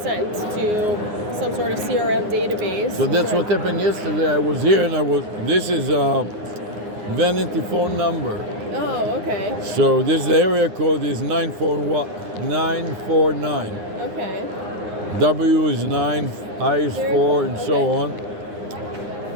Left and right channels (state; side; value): late; left; 9.6 ms